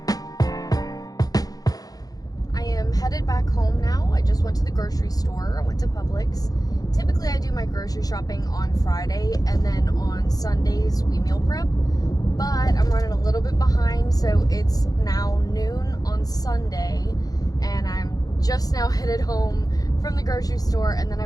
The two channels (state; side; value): late; right; 0.18 ms